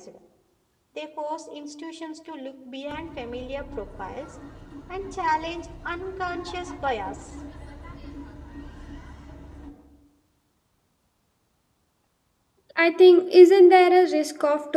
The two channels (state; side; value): identical; both; correlation 1.00